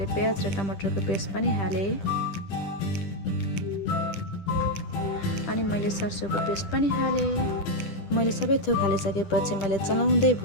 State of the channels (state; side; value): late; right; 10 ms